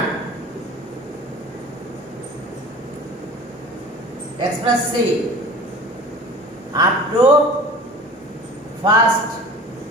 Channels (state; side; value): normal; both; correlation 0.41